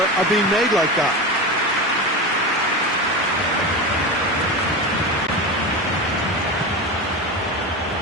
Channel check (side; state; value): both; normal; correlation 0.23